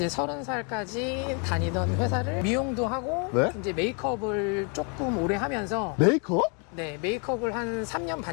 30살까지 다니던 회사를 미용도 하고 네? 이제 메이크업을 조금 오래 하면서 메이크업? 네, 메이크업을 한 3년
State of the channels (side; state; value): right; quieter; 35.9 dB